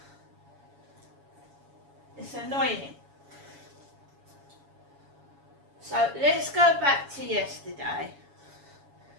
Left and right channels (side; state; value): left; late; 7.1 ms